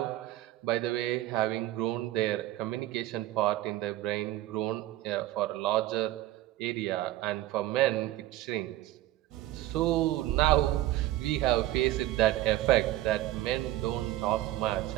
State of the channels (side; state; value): left; quieter; 15.4 dB